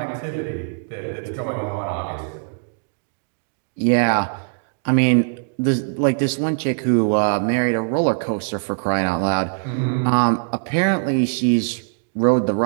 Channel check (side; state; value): left; silent; digital silence